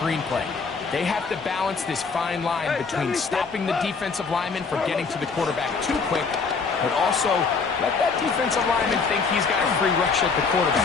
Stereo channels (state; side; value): quieter; right; 4.9 dB